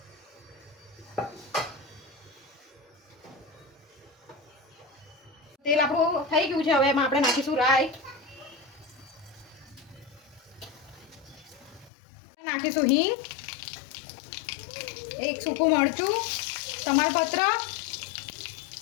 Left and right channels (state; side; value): drops out; right; at 11.9 s